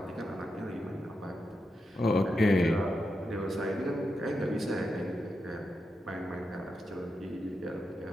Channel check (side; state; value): both; normal; correlation 0.87